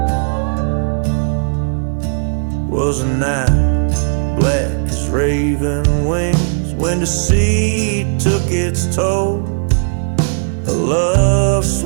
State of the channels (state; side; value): silent; left; digital silence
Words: Was a night black as raven wings, when deceit took its toll. A love